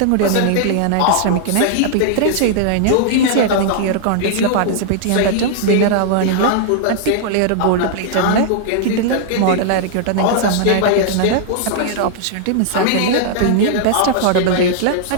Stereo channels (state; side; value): different; both; correlation -0.01